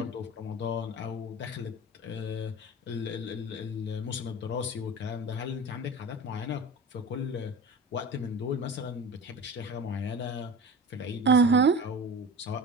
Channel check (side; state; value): both; normal; correlation 0.34